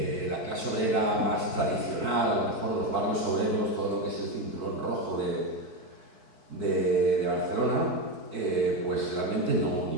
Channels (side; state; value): left; late; 4.6 ms